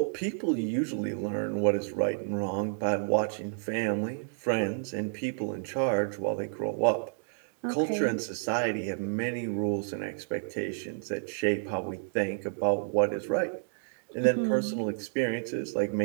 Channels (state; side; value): silent; left; digital silence